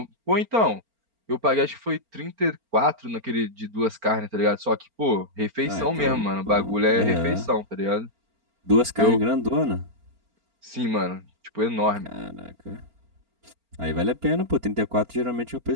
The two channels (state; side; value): late; left; 4.4 ms